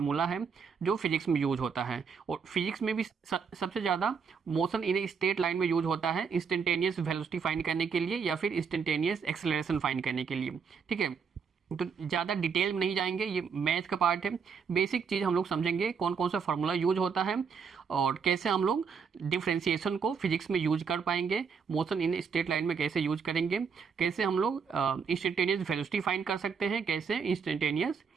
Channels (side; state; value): left; quieter; 6.1 dB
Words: है जो फिजिक्स में यूज होता है। और फिजिक्स में भी सबसे ज़्यादा motion in a straight line में यूज होता है इंस्टेंटेनियस वेलोसिटी फाइंड करने के लिए या फिर इंस्टेंटेनियस एक्सेलरेशन फाइंड करने के लिए। ठीक है, तो ज़्यादा डिटेल में नहीं जाएंगे, ये मैथ का पार्ट है। बेसिक चीज़ हम लोग समझेंगे, कौन कौन सा फार्मूला यूज होता है और कैसे हम लोग डिफरेंशिएशन को फिजिक्स में यूज कर पाएंगे, मोशन इन स्ट्रेट लाइन में कैसे यूज करेंगे, कैसे हम लोग इंस्टेंटेनियस वेलोसिटी फाइंड कर सकते हैं, कैसे इंस्टेंटेनियस